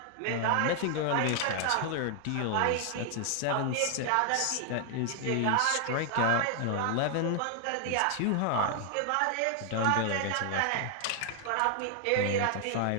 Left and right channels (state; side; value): different; both; correlation 0.00